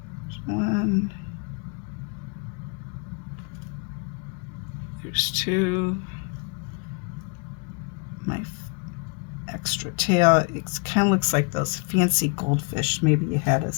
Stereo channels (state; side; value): quieter; right; 34.4 dB